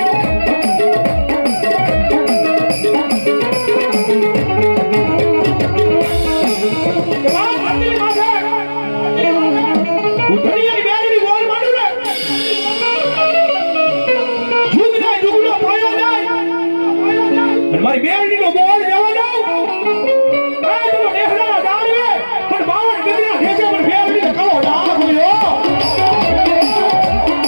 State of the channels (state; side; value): inverted; both; correlation -1.00